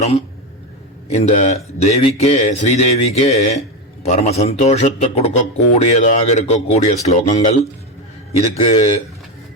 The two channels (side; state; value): both; normal; correlation 0.13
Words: இந்த தேவிக்கே, ஸ்ரீதேவிக்கே பரம சந்தோஷத்தை கொடுக்கக்கூடியதாக இருக்கக்கூடிய ஸ்லோகங்கள். இதுக்கு